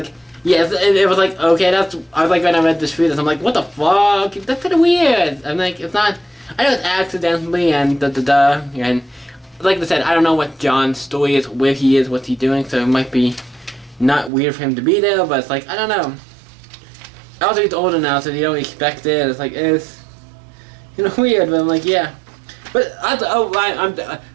yeah, it was like, okay, I was like, when I read this treatise, I'm like, what the fuck, that's kinda weird. I'm like, it's not, I know it's accidentally and and like I said, I don't know what John's story is, where he is, what's he doing, so it might be not weird for him to be there, but it's like, I don't know. Also, he's older now, so you don't expect it. It's like, it's, you know, weird, but I'm like, yeah. But,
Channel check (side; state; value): left; drops out; at 14.3 s